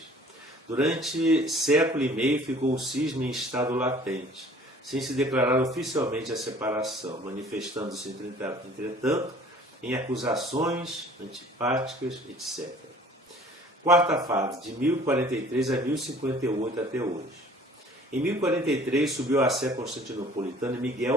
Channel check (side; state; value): both; normal; correlation 0.51